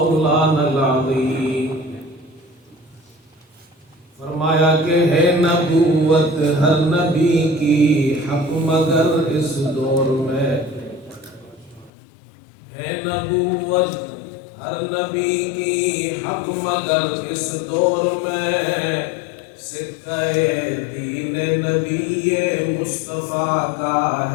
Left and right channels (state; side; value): drops out; right; at 11.9 s